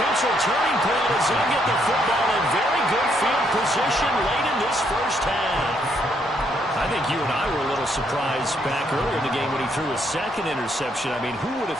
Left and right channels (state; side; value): normal; both; correlation 0.73